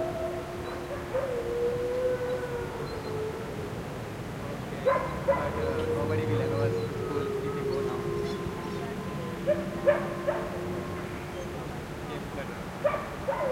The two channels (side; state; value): both; identical; correlation 1.00